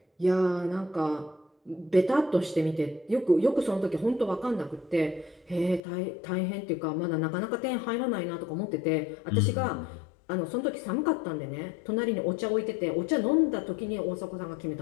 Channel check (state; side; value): drops out; right; at 5.8 s